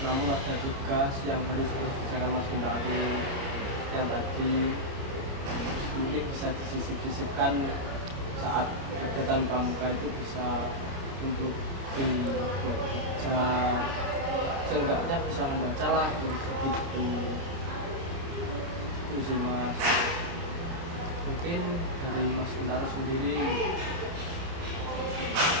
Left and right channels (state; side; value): late; left; 29 ms